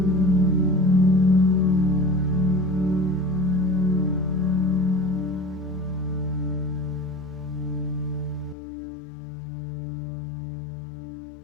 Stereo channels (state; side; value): drops out; right; at 8.6 s